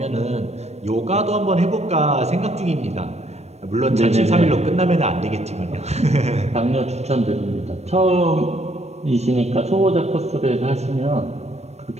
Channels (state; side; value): late; left; 0.31 ms